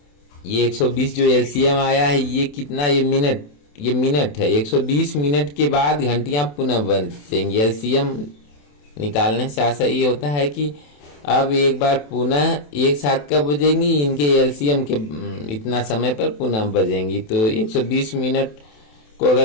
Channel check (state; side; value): late; right; 28 ms